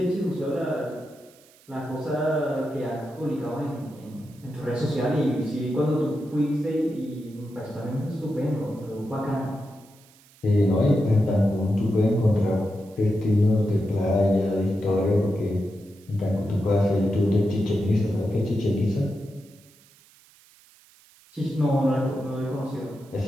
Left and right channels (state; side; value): noise; right; hiss, 28 dB below the sound